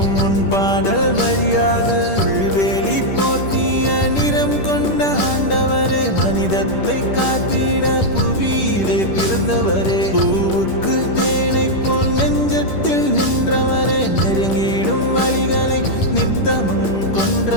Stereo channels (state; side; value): late; right; 10 ms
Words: உன் பாடல் வழியாது. புல்வேலி போர்த்திய நிறம் கொண்ட ஆண்டவரே, மனிதத்தை காத்திட புவியிலே பிறந்தவரே. பூவுக்கு தேனை போல் நெஞ்சத்தில் நின்றவரே, நெருங்கிடும் வழிகளை நித்தமும்